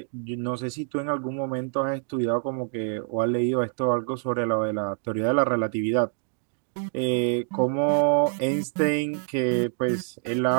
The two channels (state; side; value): silent; left; 61 dB below the other